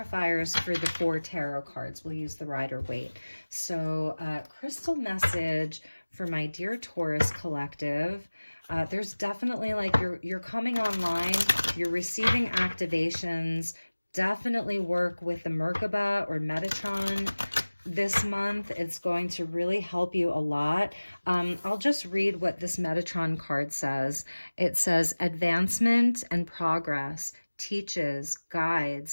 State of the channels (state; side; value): inverted; both; correlation -1.00